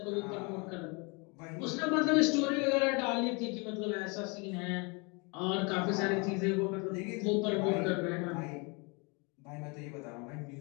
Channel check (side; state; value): right; quieter; 30.6 dB